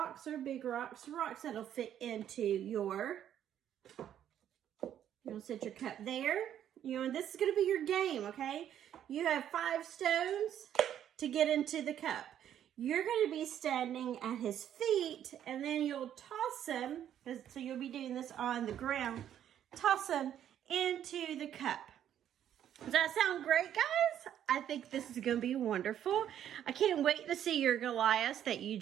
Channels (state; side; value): quieter; left; 10.3 dB